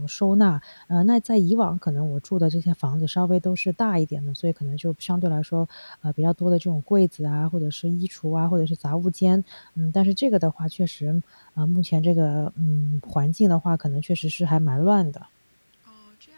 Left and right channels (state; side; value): inverted; both; correlation -1.00